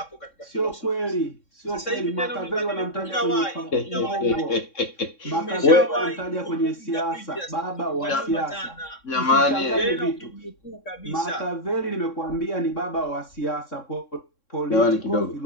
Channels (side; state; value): right; late; 3.6 ms